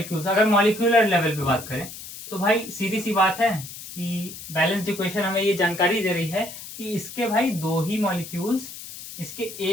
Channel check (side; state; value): left; noise; hiss, 12 dB below the sound